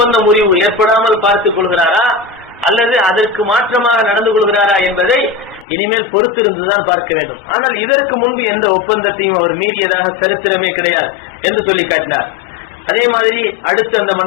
முறிவு ஏற்படாமல் பார்த்துக் கொள்கிறாரா அல்லது அதற்கு மாற்றமாக நடந்து கொள்கிறாரா என்பதை இனிமேல் பொறுத்திருந்துதான் பார்க்க வேண்டும். ஆனால் இதற்கு முன்பு எந்த ஒப்பந்தத்தையும் அவர் மீறியதாக சரித்திரமே கிடையாது என்று சொல்லி காட்டினார். அதே மாதிரி அடுத்து அந்த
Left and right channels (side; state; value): right; drops out; at 5.7 s